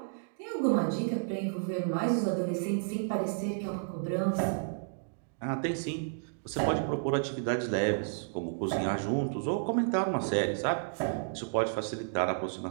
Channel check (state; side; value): silent; left; digital silence